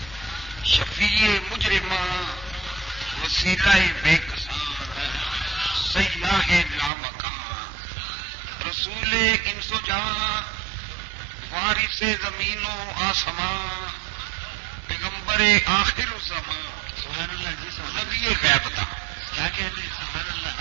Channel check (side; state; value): left; drops out; at 6.9 s